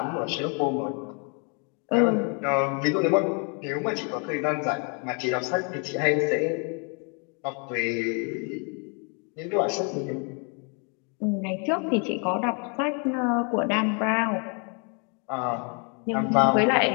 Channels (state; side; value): quieter; right; 36.9 dB